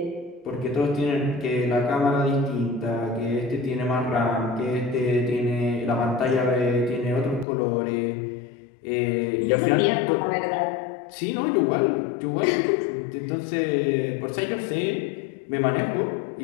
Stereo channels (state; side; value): drops out; right; at 7.5 s